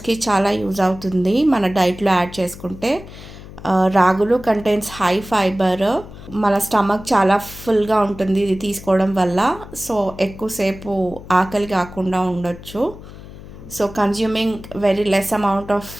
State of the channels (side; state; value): left; noise; hum, 16 dB below the sound